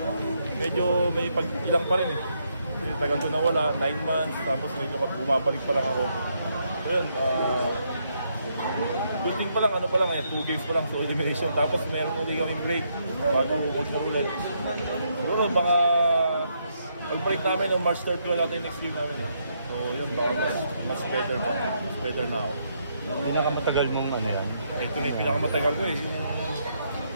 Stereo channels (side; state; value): both; inverted; correlation -0.76